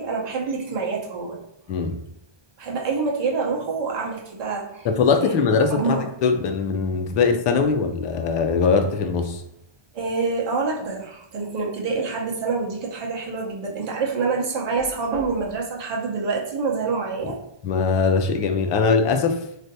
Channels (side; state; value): left; late; 1.2 ms